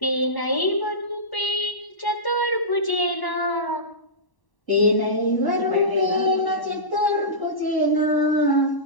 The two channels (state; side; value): late; right; 1.1 ms